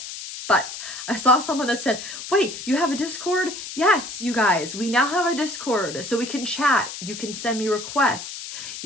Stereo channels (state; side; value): noise; left; hiss, 9 dB below the sound